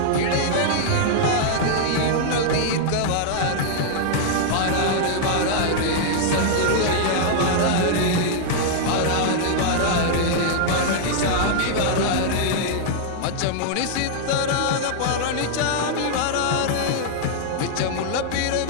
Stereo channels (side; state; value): both; different; correlation -0.01